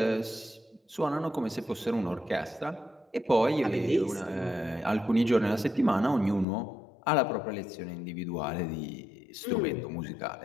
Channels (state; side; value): drops out; right; at 6.5 s